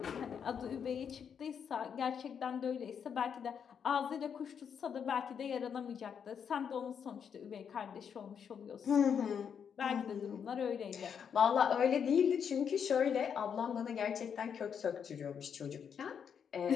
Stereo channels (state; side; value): quieter; right; 7.4 dB